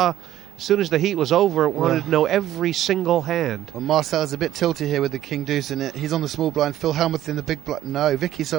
as soon as the heat was over, wanted to know every single hand. Well, Marcel's a bit tilty here with the king deuce in it. He's on the small blind. Phil Hellmuth in the big blind. No, Vicky,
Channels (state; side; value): quieter; left; 12.7 dB